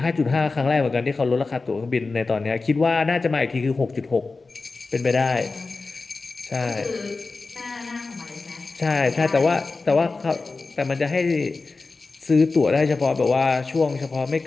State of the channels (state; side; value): quieter; right; 3.9 dB